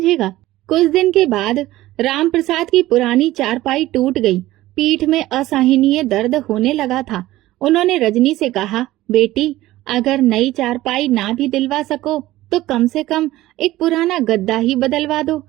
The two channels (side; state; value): left; quieter; 16.4 dB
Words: कुछ दिन के बाद राम प्रसाद की पुरानी चारपाई टूट गई। पीठ में असहनीय दर्द होने लगा था। उन्होंने रजनी से कहा, बेटी, अगर नई चारपाई ना भी दिलवा सको तो कम से कम एक पुराना गद्दा ही बदलवा दो,